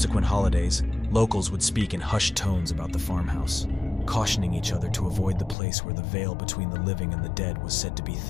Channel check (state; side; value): drops out; right; at 5.6 s